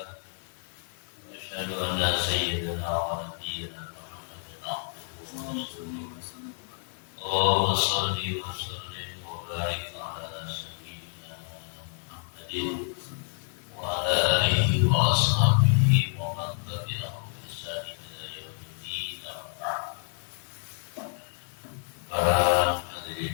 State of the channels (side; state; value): right; silent; 58 dB below the other